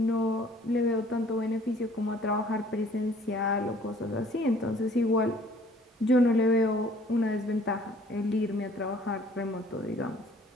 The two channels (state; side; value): normal; both; correlation 0.55